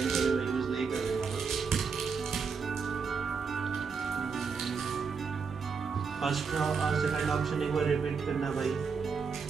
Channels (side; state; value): left; quieter; 5.5 dB